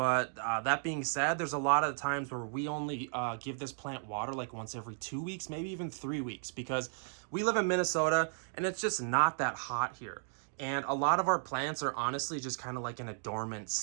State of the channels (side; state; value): left; silent; digital silence